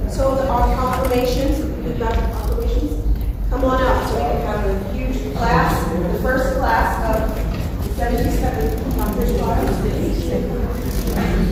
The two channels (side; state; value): both; identical; correlation 1.00